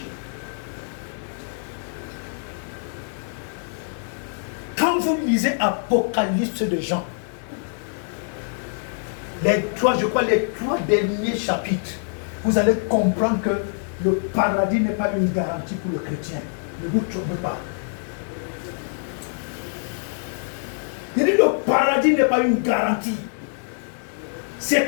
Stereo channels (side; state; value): right; silent; digital silence